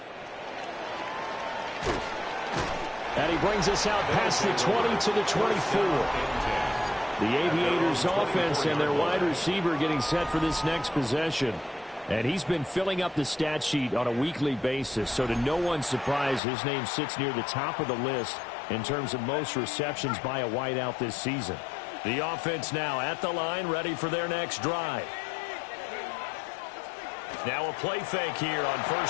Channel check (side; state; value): right; drops out; at 16.4 s